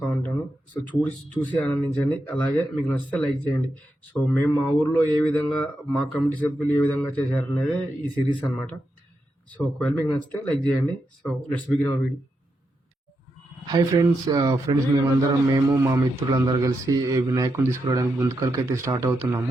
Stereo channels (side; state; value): both; normal; correlation 0.85